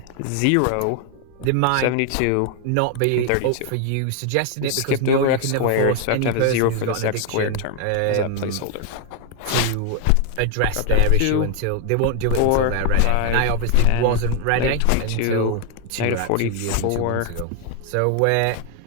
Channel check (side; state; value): both; different; correlation 0.00